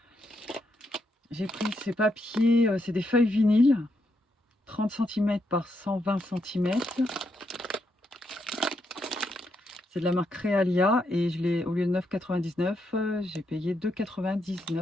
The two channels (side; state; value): both; normal; correlation 0.80